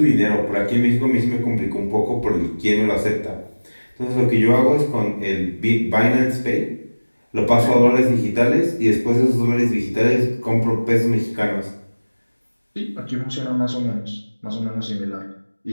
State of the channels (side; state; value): both; inverted; correlation -1.00